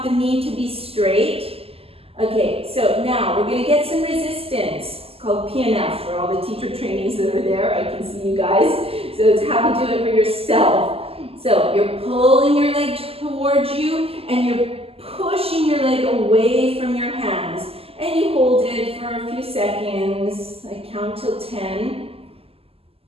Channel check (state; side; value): late; left; 0.28 ms